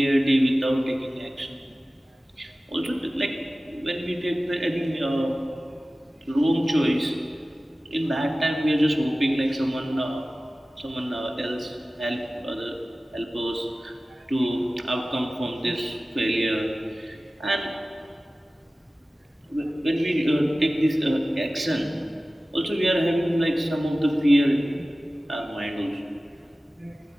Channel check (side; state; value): both; normal; correlation 0.97